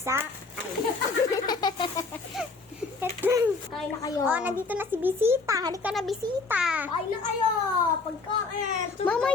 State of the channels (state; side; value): quieter; right; 4.1 dB